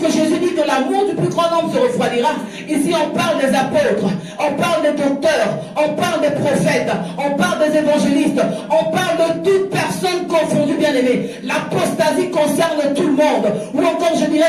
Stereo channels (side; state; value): both; identical; correlation 1.00